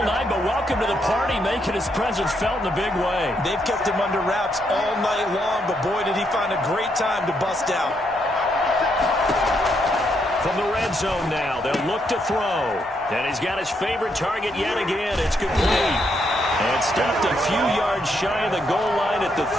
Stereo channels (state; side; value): normal; both; correlation 0.77